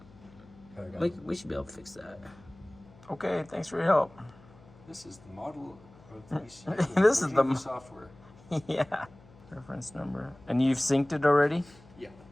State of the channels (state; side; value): noise; left; hum, 24 dB below the sound